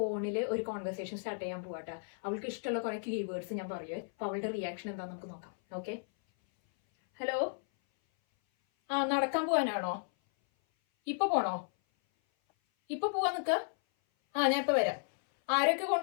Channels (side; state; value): right; silent; 55 dB below the other